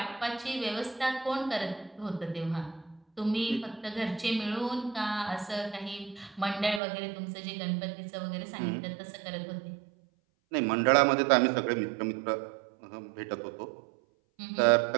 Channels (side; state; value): left; drops out; at 6.8 s